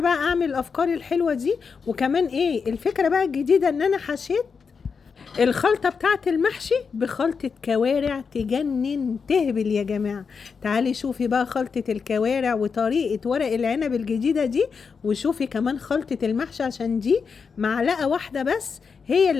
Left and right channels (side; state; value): right; quieter; 5.6 dB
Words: أعمل الأفكار الحلوة دي. وكمان إيه الفكرة بقى الجديدة؟ إن أنا حشيت الخلطة بتاعت المحشي بخلطة كوارع تجنن تهبل يا جماعة. تعالي شوفي بقى خلطة الكوارع وطريقة ورق العنب الجديدة دي، وشوفي كمان خلطة المحشي، عشان دي معلقة واحدة بس هي